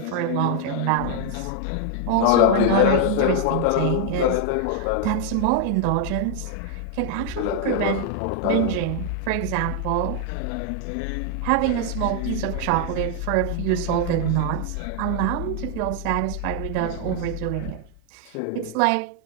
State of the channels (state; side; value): different; both; correlation 0.00